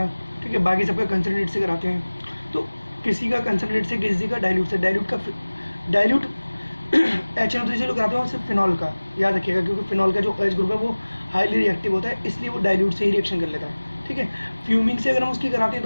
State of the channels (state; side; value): inverted; both; correlation -1.00